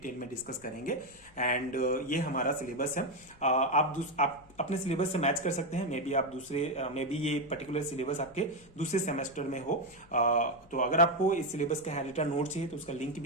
में डिस्कस करेंगे। एंड ये हमारा सिलेबस है। आप अपने सिलेबस से मैच कर सकते हैं। मे बी ये पर्टिकुलर सिलेबस आपके दूसरे सेमेस्टर में हो। तो अगर आपको इस सिलेबस का हैंडरिटन नोट चाहिए तो उसका लिंक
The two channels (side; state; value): left; noise; hum, 27 dB below the sound